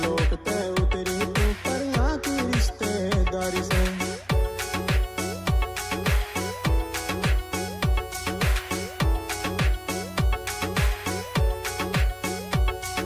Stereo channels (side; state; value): both; identical; correlation 1.00